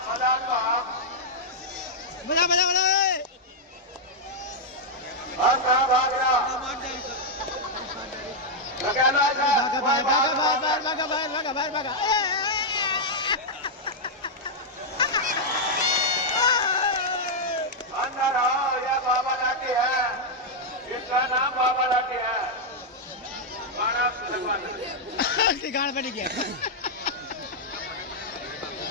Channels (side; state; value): both; normal; correlation -0.04